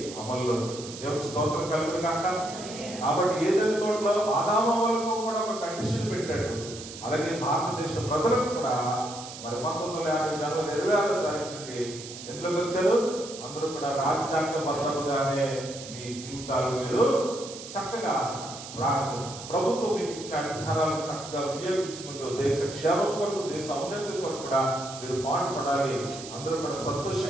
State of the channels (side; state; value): right; noise; hiss, 12 dB below the sound